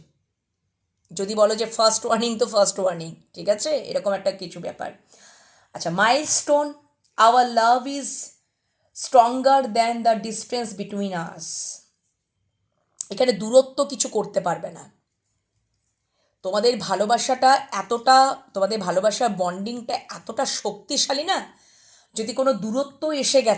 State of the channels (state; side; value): identical; both; correlation 1.00